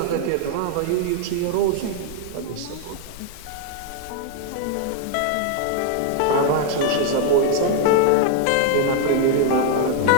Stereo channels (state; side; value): different; both; correlation 0.00